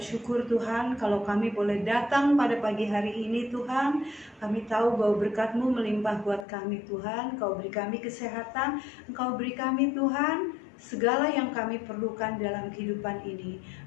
Tuhan kalau kami boleh datang pada pagi hari ini Tuhan. Kami tahu bahwa berkat-Mu melimpah buat kami Tuhan. Kau beri kami kesehatan, Engkau beri kami Tuhan segala yang kami perlukan dalam kehidupan ini.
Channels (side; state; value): right; drops out; at 6.5 s